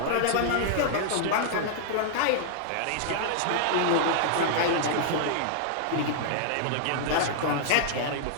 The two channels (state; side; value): different; both; correlation -0.01